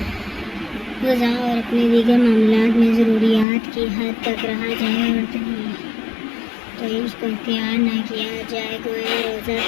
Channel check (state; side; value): drops out; right; at 3.5 s